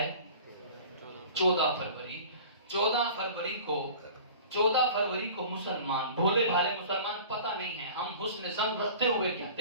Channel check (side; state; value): both; inverted; correlation -0.42